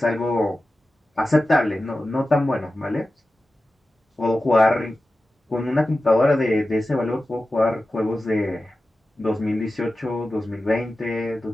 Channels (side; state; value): both; normal; correlation 0.94